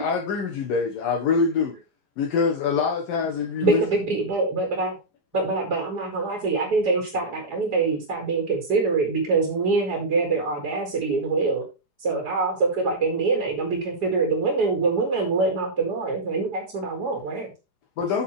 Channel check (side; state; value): right; late; 4.9 ms